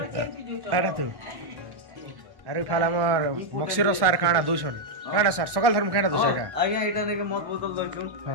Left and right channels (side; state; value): left; late; 1.1 ms